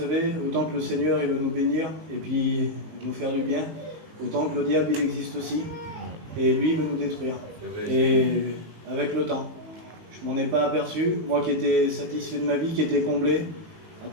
autant que le Seigneur il veut nous bénir et puis nous faire du bien, autant que le diable il existe aussi. Et lui il veut nous détruire. Et avec le temps, je m'en ai pas aperçu, moi qui étais satisfait de ma vie, qui était comblé, à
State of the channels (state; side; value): late; left; 18 ms